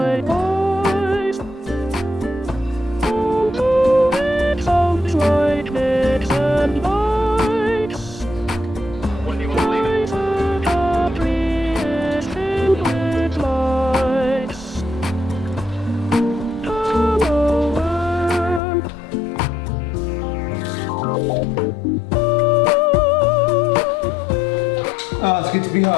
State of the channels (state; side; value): drops out; right; at 18.6 s